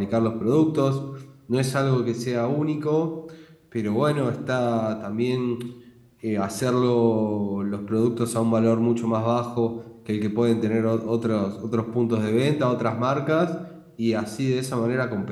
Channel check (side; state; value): both; identical; correlation 1.00